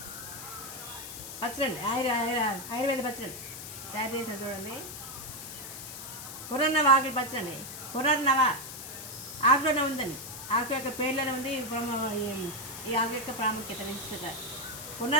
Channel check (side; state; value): left; noise; hiss, 10 dB below the sound